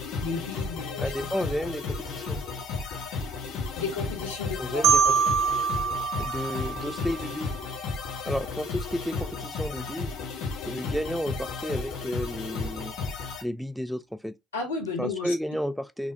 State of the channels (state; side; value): normal; both; correlation 0.61